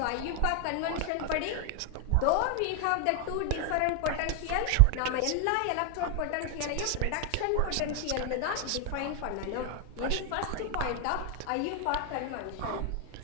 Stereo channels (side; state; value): both; different; correlation 0.00